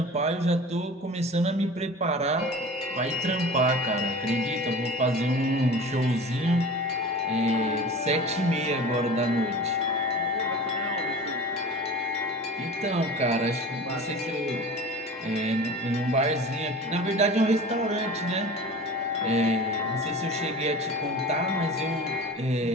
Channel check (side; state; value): both; normal; correlation 0.37